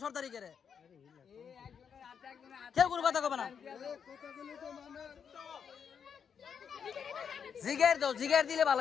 সরকারি করে কেউ কোনো কথা কবে না। জিগের দাও, জিগের দিলে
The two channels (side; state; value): right; quieter; 7.1 dB